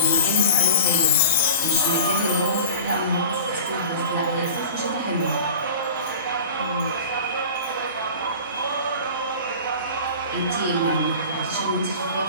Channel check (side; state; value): both; inverted; correlation -0.37